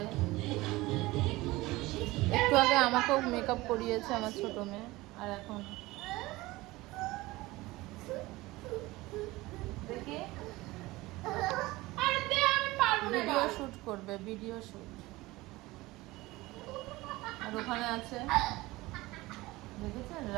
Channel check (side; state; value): left; quieter; 19.9 dB